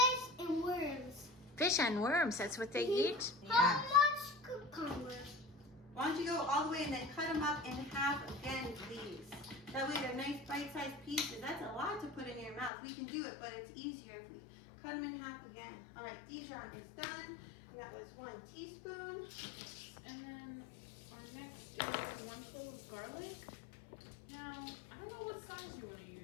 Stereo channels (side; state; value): right; drops out; at 12.7 s